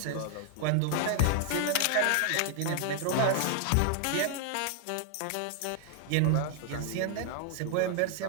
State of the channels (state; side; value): different; both; correlation 0.00